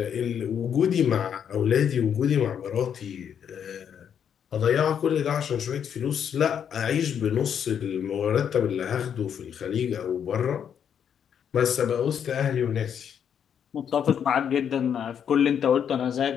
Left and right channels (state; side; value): quieter; right; 8.3 dB